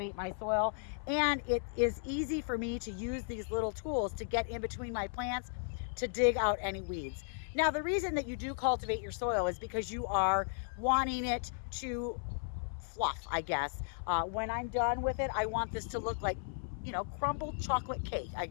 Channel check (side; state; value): right; silent; 54 dB below the other